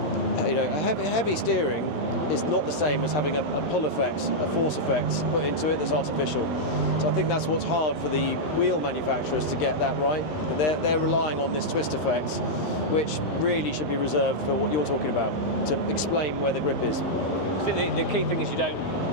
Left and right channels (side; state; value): right; late; 11 ms